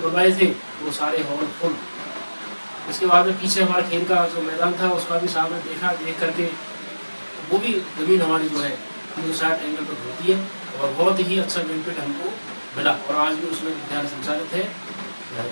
बनवाए थे वो सारे हॉल फुल। इसके बाद में पीछे हमारा खेल का जो मैदान था उसका भी सामने देख करके वो भी ज़मीन हमारी जो है 360 एंगल पर होती है और बहुत ही अच्छा बेनिफिट हमको मिला और आज भी उसमें विद्यालय संचालित है।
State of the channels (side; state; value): both; inverted; correlation -1.00